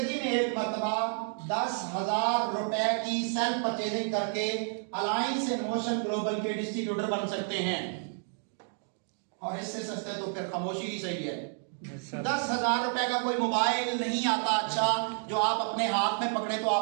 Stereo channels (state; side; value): silent; left; 58 dB below the other